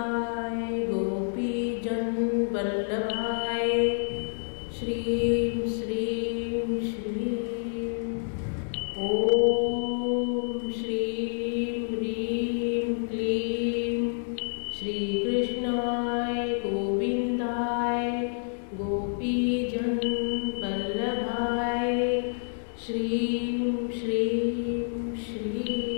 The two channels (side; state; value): right; silent; digital silence